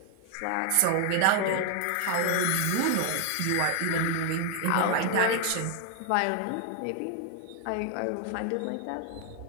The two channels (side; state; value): both; different; correlation 0.00